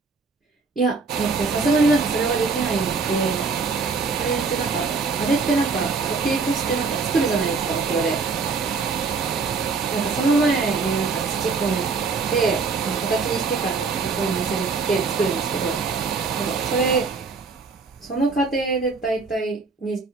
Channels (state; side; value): quieter; left; 4.5 dB